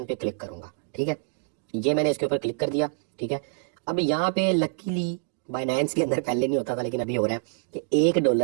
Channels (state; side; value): silent; left; 59 dB below the other